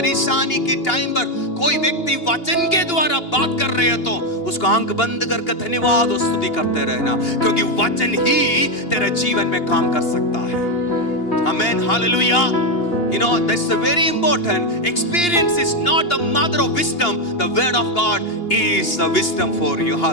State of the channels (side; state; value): right; late; 2.8 ms